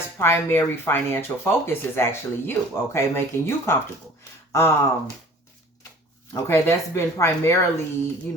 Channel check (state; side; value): normal; both; correlation 0.48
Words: primary financial focus is actually you, okay? Making you comfortable. Okay, that's been primarily, you